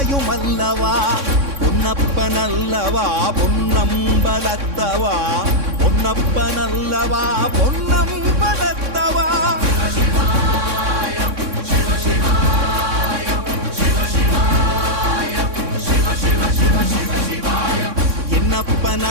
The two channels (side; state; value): left; late; 3.6 ms